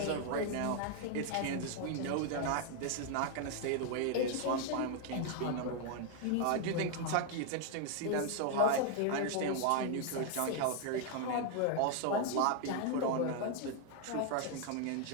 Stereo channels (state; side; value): different; both; correlation 0.00